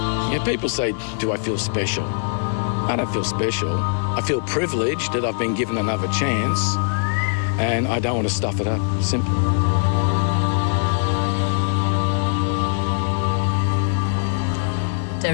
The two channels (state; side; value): silent; right; digital silence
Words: Yeah, people say, do I feel special? I don't feel special. I feel privileged that I've been given another chance, and I don't want to stuff it up. Simple.